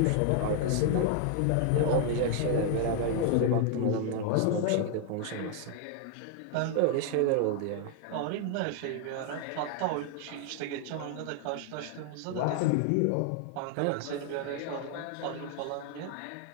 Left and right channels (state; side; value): different; both; correlation 0.00